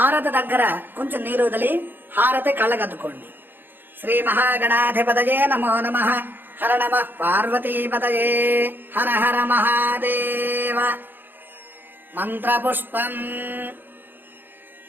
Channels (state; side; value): late; left; 0.094 ms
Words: దగ్గర కొంచెం నీరు వదిలి హారతి కళ్ళగద్దుకోండి. శ్రీ మహాగణాధిపతయే నమో నమః. హర నమః పార్వతీపతయే. హర హర మహాదేవ. మంత్రపుష్పం.